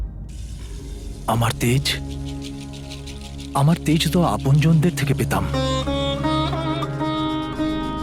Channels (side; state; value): both; identical; correlation 1.00